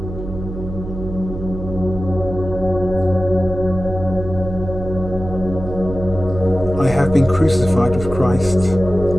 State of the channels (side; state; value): right; noise; hum, 9 dB below the sound